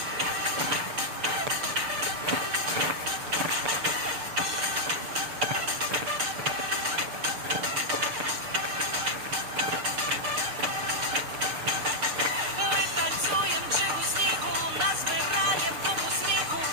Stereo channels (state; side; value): late; left; 6.6 ms